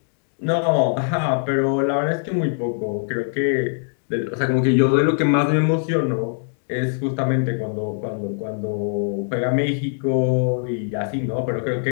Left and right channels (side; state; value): right; silent; digital silence